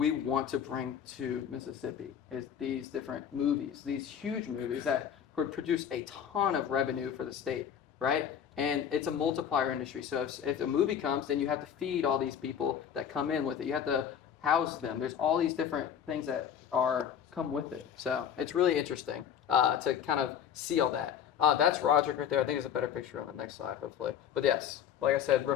want to bring to Mississippi, is these different movies, these huge movies that could produce a ton of revenue for the state, right? And it's a multiplier industry. So if a movie comes, then you have to feed all these people that come in with it. You have to house them. There's all these different things that come with it. So it's really interesting to kind of see all that. That's Roderick right there. I think there's a better picture on the next slide, hopefully. But yes, like I said,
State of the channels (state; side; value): quieter; right; 8.7 dB